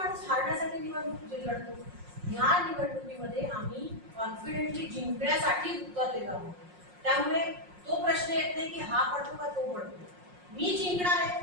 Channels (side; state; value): left; late; 5.6 ms